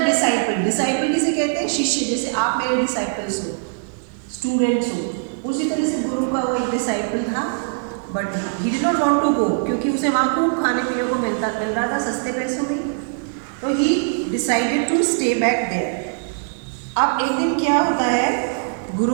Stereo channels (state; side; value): silent; left; 65 dB below the other